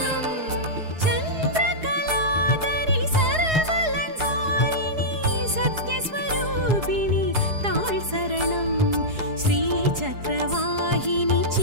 चन्द्रकलाधरि सर्वलङ्कारिणि सत्यस्वरूपिणि ताळ் சரணம் श्रीचक्रवाहिनि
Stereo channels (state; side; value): late; left; 4.8 ms